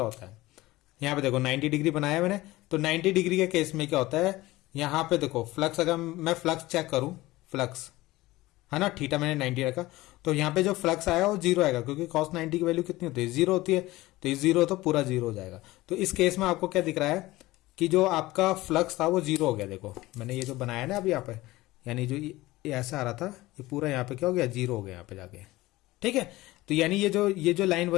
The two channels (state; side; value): quieter; right; 18.6 dB